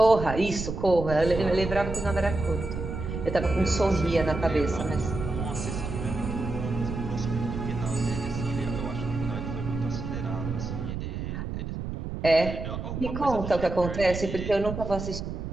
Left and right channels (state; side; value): noise; right; rumble, 5 dB below the sound